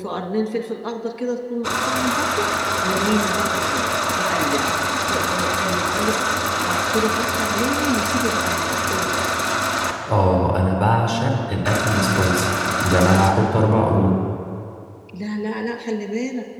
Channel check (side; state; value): both; identical; correlation 1.00